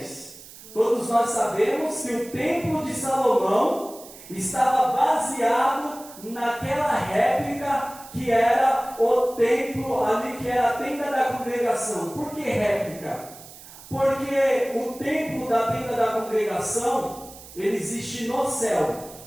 Todos nós sabemos que o templo de Salomão estava baseado naquela réplica que era o templo ali, que era a tenda da congregação. Por que réplica? Porque o templo da tenda da congregação, ele existe no céu.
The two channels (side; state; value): right; noise; hiss, 18 dB below the sound